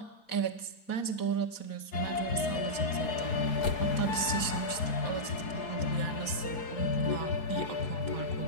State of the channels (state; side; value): late; right; 4.1 ms